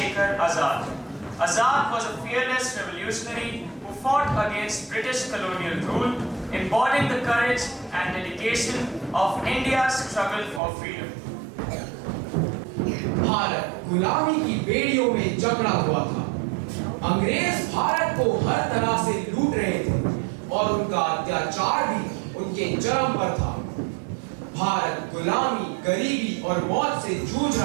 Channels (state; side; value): drops out; left; at 10.6 s